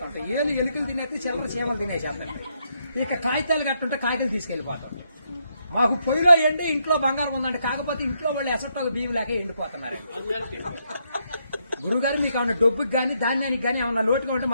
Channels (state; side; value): inverted; both; correlation -0.77